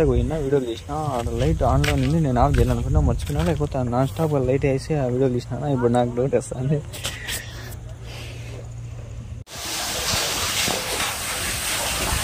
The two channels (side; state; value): both; identical; correlation 1.00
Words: పోయినా వీడియోలు తీసిన. లైట్ ఆన్లో ఉంది, నేను ఆఫ్ చేయాలనుకున్నా, మర్చిపోయినా. లేకపోతే నాన్ స్టాప్ లైట్ వేసి ఆ వీడియోలు తీసినా. ఇప్పుడు నాకు డౌట్ వస్తుంది.